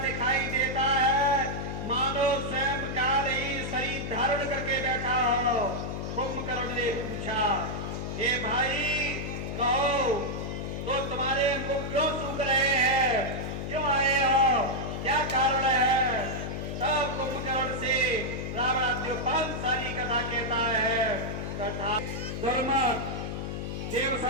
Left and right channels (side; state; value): left; noise; hum, 5 dB below the sound